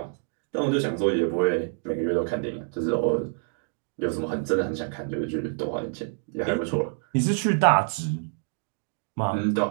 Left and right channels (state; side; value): silent; left; 58 dB below the other